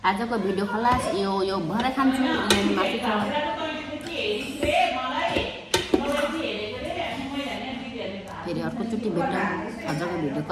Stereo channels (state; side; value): identical; both; correlation 1.00